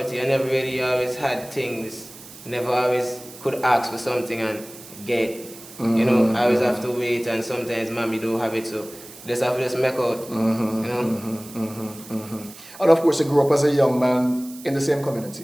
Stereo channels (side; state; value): right; noise; hiss, 18 dB below the sound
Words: I never really always had things. Never always could ask for something and get. You know, I always have to wait, and sometimes mommy don't have it, so just have to just make out. You know. And of course, you grew up as a young man in the same